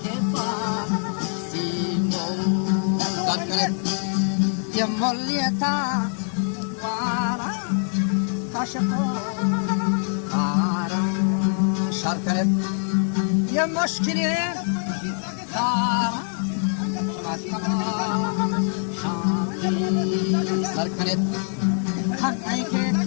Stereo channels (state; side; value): silent; right; 56 dB below the other